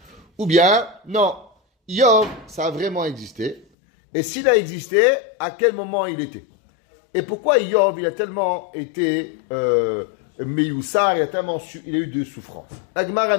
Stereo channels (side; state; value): right; drops out; at 3.7 s